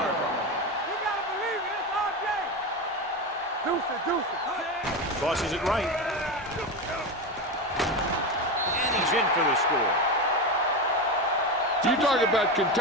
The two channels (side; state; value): both; normal; correlation 0.18